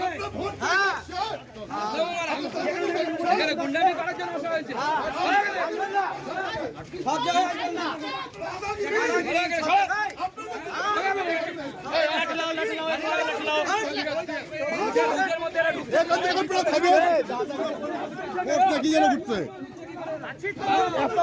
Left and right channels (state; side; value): identical; both; correlation 1.00